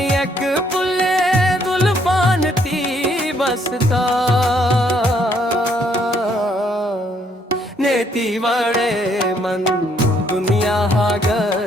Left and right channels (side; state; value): both; normal; correlation 0.68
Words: पुले दुल्फान थी बसता नेती वड़े मन दुनिया हा